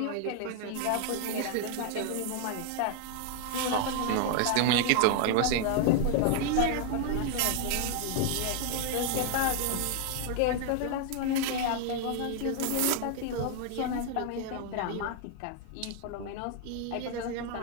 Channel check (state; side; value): different; both; correlation 0.00